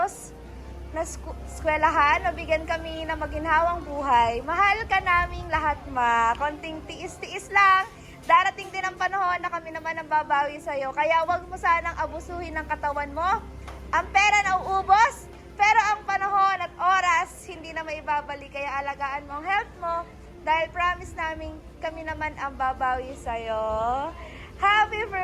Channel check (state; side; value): identical; both; correlation 1.00